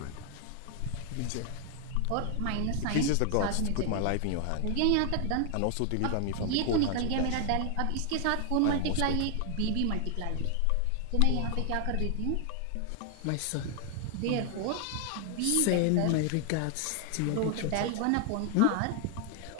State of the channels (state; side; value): different; both; correlation 0.00